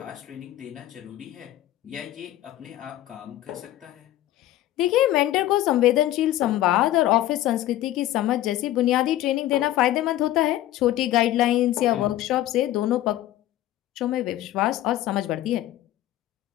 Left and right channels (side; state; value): right; quieter; 14.2 dB